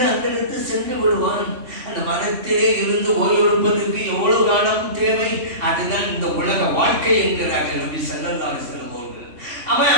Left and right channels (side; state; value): left; late; 2.7 ms